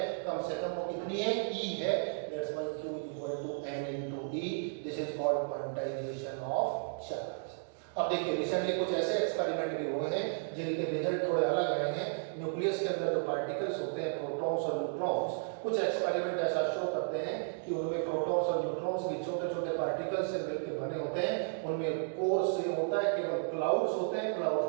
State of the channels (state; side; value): silent; left; digital silence